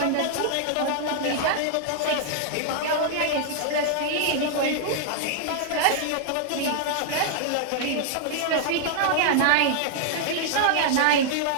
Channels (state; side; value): different; both; correlation -0.01